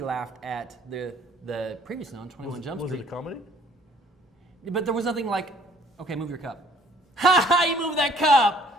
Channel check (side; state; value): both; normal; correlation 0.58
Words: laughed at the previously on 21 Jump Street. Was it a comedy? But there was nothing like, okay, move your cup. Ha ha! You move that